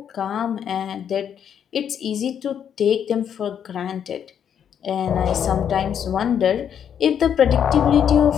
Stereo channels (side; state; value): right; quieter; 8.6 dB